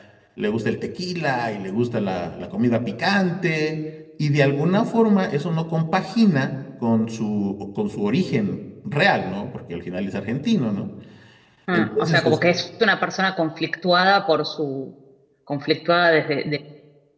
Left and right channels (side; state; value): both; identical; correlation 1.00